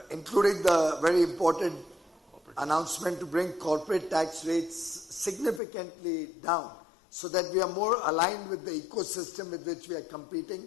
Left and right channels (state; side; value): drops out; right; at 5.6 s